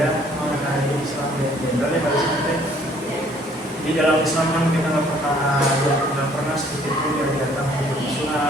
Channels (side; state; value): both; normal; correlation 0.60